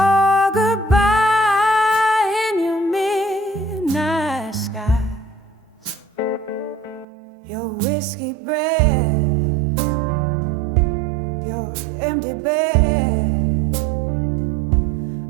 goodbye in your midnight skies. Your whiskey breath, your empty bed.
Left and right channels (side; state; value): left; drops out; at 7.1 s